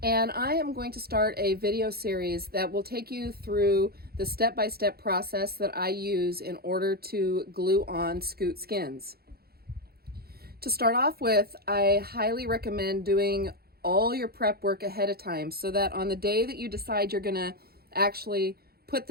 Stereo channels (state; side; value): late; left; 0.45 ms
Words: and I am going to start a video series that will take you through the step-by-step process that I use in order to glue on Scoot skins. To start off with, I highly recommend doing all your prep work ahead of time so that on the day that you decide you're going to actually put